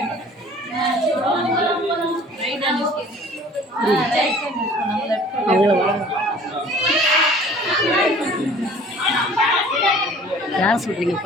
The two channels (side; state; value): both; normal; correlation 0.49